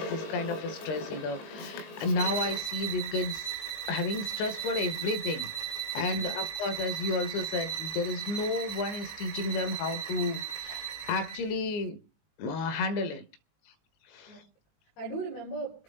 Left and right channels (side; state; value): right; late; 19 ms